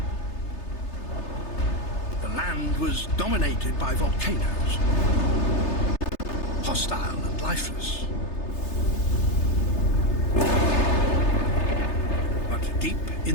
The land was dominated by volcanoes, hostile and lifeless. But deep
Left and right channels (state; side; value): late; right; 3.3 ms